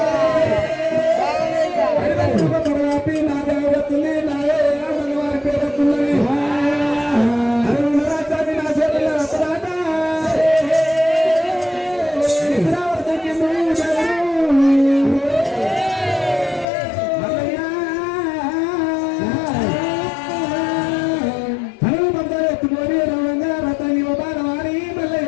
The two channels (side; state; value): right; drops out; at 16.7 s